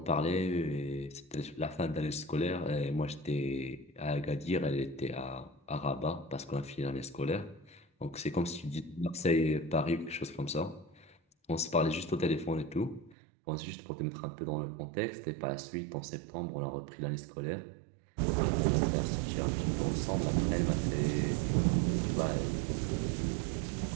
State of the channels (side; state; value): left; drops out; at 13.2 s